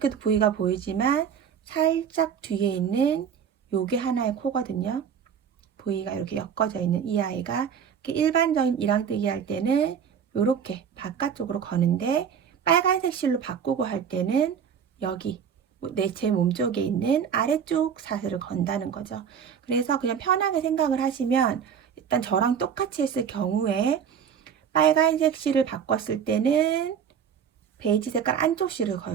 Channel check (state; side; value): quieter; left; 7.7 dB